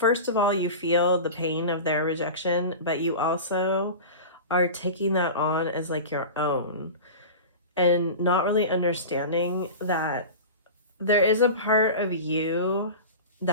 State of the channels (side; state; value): both; inverted; correlation -0.31